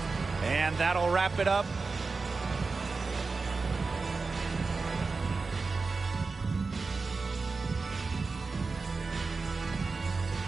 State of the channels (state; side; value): quieter; left; 4.2 dB